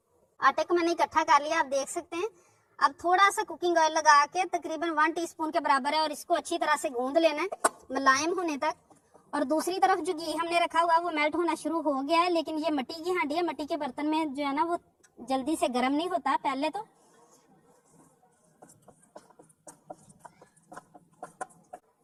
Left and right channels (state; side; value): identical; both; correlation 1.00